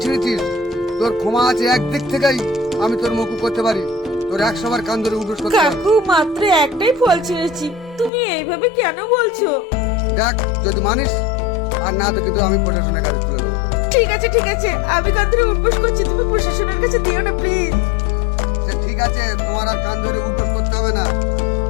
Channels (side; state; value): right; drops out; at 8.1 s